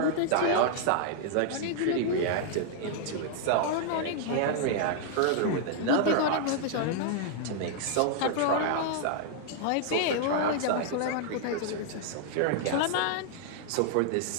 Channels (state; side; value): different; both; correlation -0.01